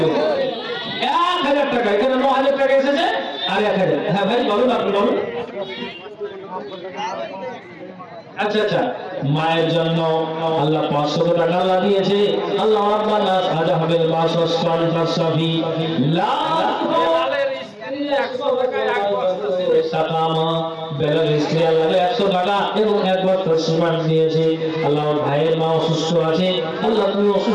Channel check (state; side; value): identical; both; correlation 1.00